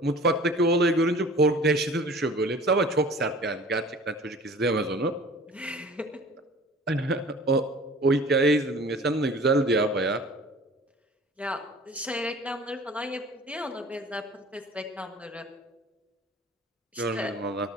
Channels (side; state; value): both; normal; correlation 0.45